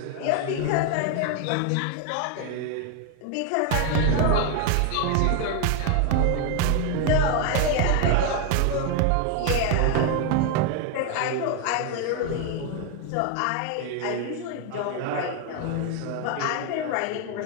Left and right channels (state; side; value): different; both; correlation 0.01